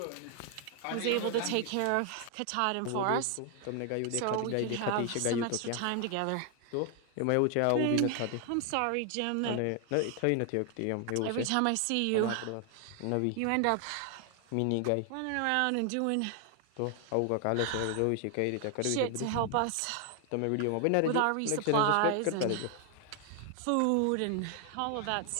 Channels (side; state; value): both; different; correlation 0.00